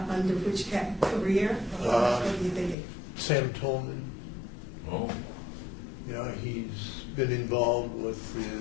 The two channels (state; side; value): drops out; right; at 2.8 s